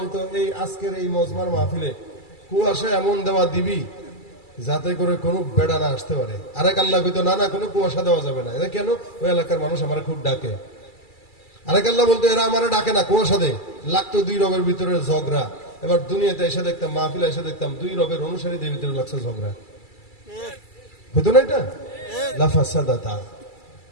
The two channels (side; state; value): right; late; 2.3 ms